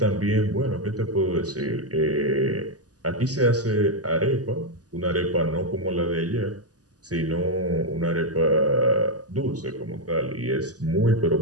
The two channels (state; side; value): late; left; 0.67 ms